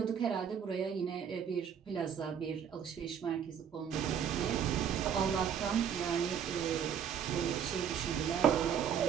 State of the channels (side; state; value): left; quieter; 8.1 dB